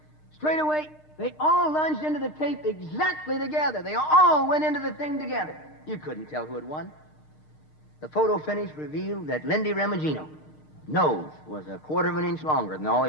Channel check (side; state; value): right; late; 6.5 ms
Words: straightaway. They all lunged into the tape exactly together. They all went into the thing together. You couldn't tell who had won. The photo finish revealed that Lindy Remigino nose was 1/4 of an inch longer than all